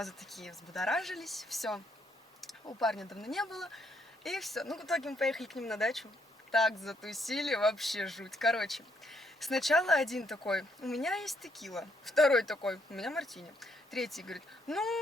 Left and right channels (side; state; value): both; normal; correlation 0.73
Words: такие взбудоражились. Все. У парня давно не было. И все. Ну, в итоге мы поехали к ним на дачу. Так затусили, вообще жуть. Короче, сначала один такой: у меня есть текила. Второй такой: у меня мартини. Третий говорит: ну,